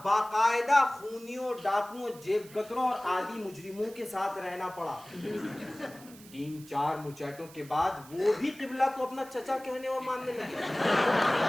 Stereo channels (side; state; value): right; noise; hiss, 20 dB below the sound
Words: बाकायदा खूनियों, डाकुओं, जेबकतरों और आदि मुजरिमों के साथ रहना पड़ा। 3-4 मुचैटों के बाद वो भी किबला को अपना चचा कहने और मानने लगे।